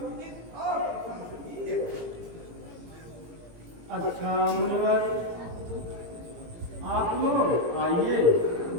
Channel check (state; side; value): late; left; 18 ms